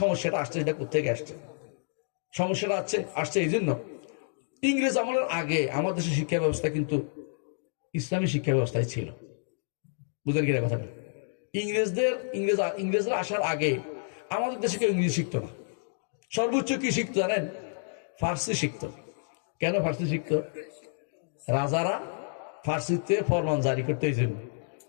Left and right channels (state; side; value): silent; right; digital silence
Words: সমস্যাটা আসছে, সেটা কোথেকে আসছে? সমস্যাটা আসছে এই জন্য, ইংরেজ আমলের আগে আমাদের দেশের শিক্ষা ব্যবস্থা কিন্তু ইসলামী শিক্ষা ব্যবস্থায় ছিল। বুঝলেন কিনা কথাটা? ইংরেজরা আসার আগে আমাদের দেশে কেউ ইংরেজি শিখতো না। সর্বোচ্চ কি শিখতো জানেন? ফার্সি শিখতো। কেন ফার্সি শিখতো? রাজারা ফার্সিতে ফরমান জারি করতে, এই জন্য।